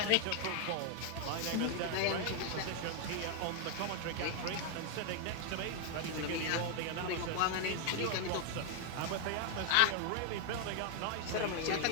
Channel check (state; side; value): different; both; correlation 0.01